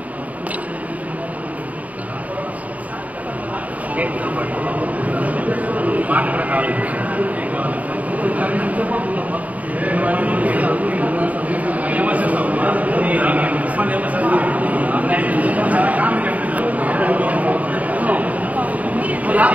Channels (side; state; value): left; late; 0.071 ms